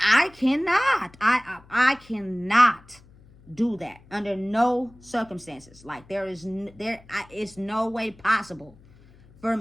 cannot. I cannot do that under no circumstances. Like it's no way possible for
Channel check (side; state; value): left; noise; hum, 26 dB below the sound